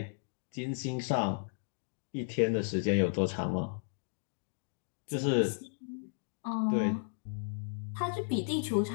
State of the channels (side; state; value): right; silent; digital silence